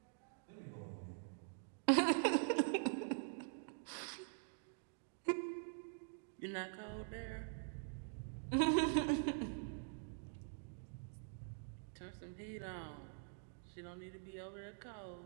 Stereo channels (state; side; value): silent; left; digital silence